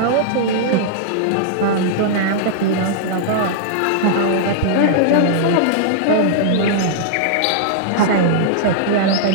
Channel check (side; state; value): both; different; correlation -0.02